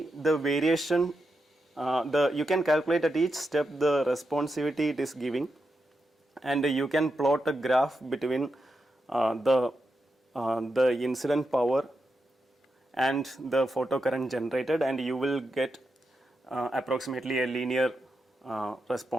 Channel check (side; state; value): both; normal; correlation 0.87